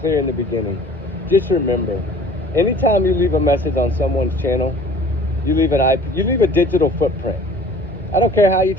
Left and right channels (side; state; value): both; normal; correlation 0.49